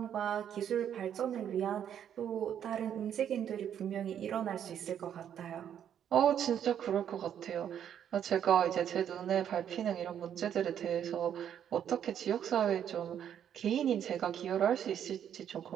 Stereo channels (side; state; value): left; quieter; 9.4 dB